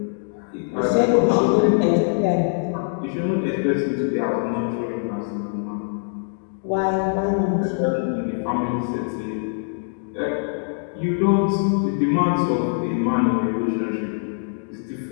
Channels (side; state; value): right; silent; digital silence